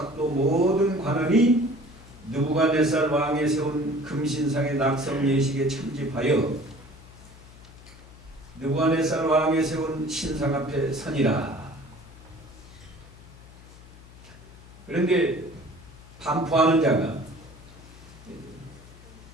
모든 관원이 느부갓네살 왕이 세운 금신상의 낙성 예식에 참집하여 느부갓네살 왕이 세운 신상 앞에 서니라. 그런데 반포하는 자가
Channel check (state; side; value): noise; left; hum, 20 dB below the sound